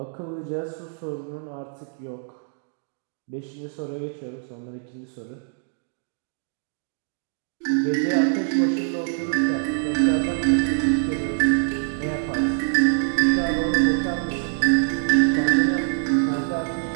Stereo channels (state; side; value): silent; left; digital silence